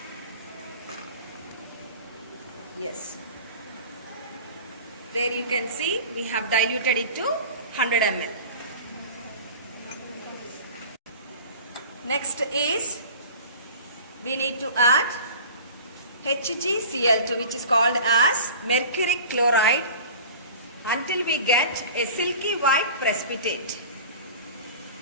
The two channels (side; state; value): both; inverted; correlation -0.39